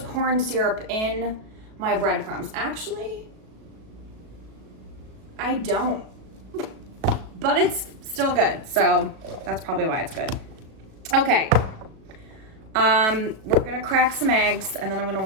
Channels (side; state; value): left; late; 37 ms